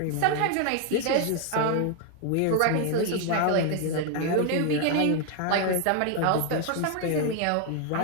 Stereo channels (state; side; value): different; both; correlation 0.00